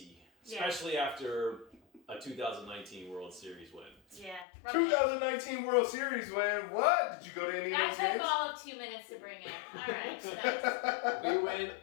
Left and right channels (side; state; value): right; drops out; at 4.5 s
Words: especially after a 2019 World Series win. Yeah. 2019 World Series win? What? Did you go to any of those games? That took all of 2 minutes to bring in. All right. Nice. We went